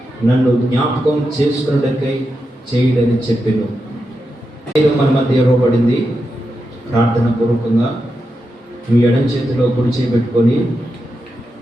నన్ను జ్ఞాపకం చేసుకున్నటకై చేయడని చెప్పాను. మన మధ్య ఇవ్వబడింది. ప్రార్థన పూర్వకంగా మీ ఎడం చేతిలో కుడి చేపెట్టుకొని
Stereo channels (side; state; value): both; normal; correlation 0.87